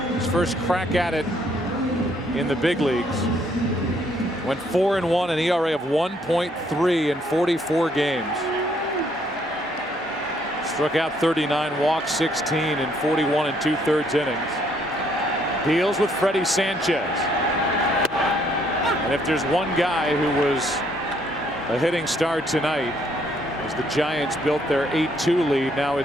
his first crack at it in the big leagues, went 4-1, an ERA of 1.3 in 44 games. Struck out 39, walked 16 in 41 2/3 innings. Deals with Freddie Sanchez. And if there's one guy who was a hitting star tonight, as the Giants built their 8-2 lead, now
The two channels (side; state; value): both; normal; correlation 0.68